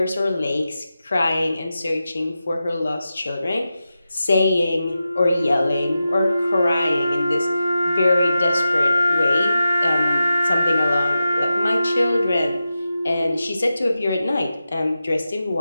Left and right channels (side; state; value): both; inverted; correlation -0.91